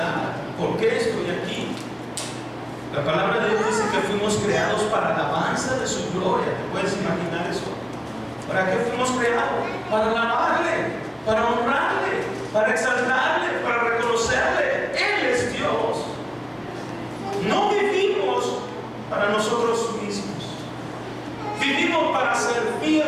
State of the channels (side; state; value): both; identical; correlation 1.00